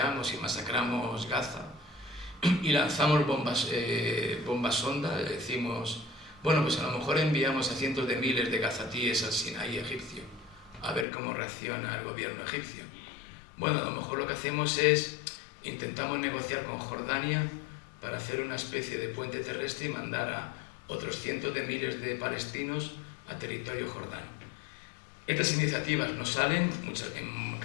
y masacramos Gaza y lanzamos bombas sonda, decimos, bueno, pues a lo mejor enviamos a cientos de miles de gazatíes al Sinaí egipcio a ver cómo reacciona el gobierno egipcio. Bueno, a lo mejor lo que hacemos es intentamos negociar con Jordania para hacer una especie de puente terrestre y mandar a otros cientos de miles de palestinos a territorio jordano. Estas iniciativas no salen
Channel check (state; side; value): drops out; right; at 11.1 s